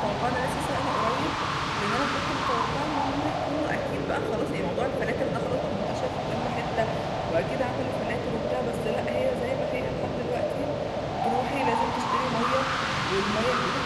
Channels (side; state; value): both; identical; correlation 1.00